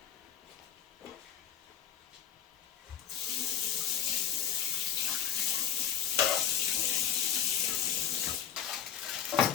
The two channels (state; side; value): quieter; right; 9.5 dB